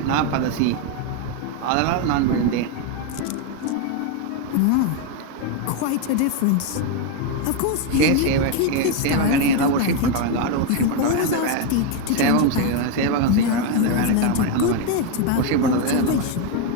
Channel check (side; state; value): both; different; correlation 0.01